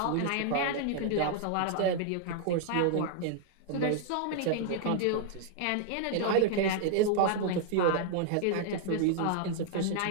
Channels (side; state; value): both; different; correlation -0.01